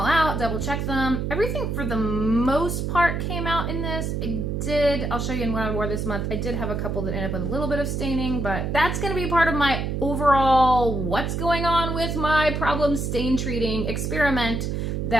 out, double check them. Everything for the most part came out in this. I'll show you in what I wore this month. I did have a couple that ended up with a little bit of staining, but that's gonna be part of my overall what's going on with my problem stain treating experiment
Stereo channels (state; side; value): noise; right; hum, 1 dB below the sound